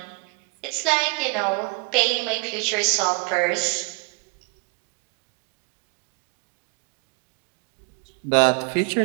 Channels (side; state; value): left; quieter; 33.4 dB